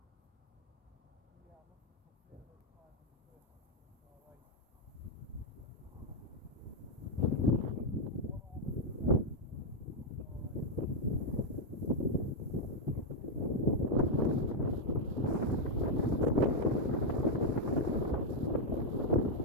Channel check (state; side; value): normal; both; correlation 0.00